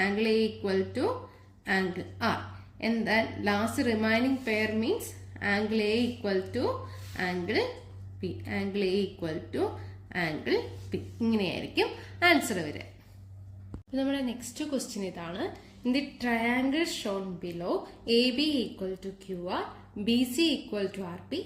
Angle A equal to angle R. And then last remaining pair means angle A equal to angle P. Angle A equal to angle P. ഇങ്ങനെയായിരിക്കും answer വരിക. നമ്മുടെ next question ഇതാണ്. In the triangle shown below, AB equal to QR, BC equal to RP,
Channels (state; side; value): identical; both; correlation 1.00